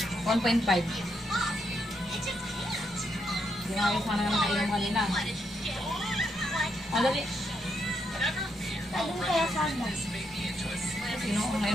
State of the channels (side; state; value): both; normal; correlation 0.79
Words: 1.5. Hindi nga ayos sana ka nakainom kanina. Dali. Ayun kaya sana. Sino?